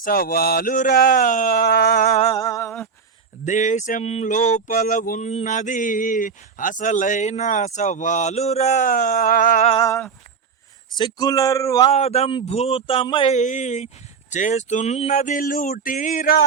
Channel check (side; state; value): left; quieter; 5.9 dB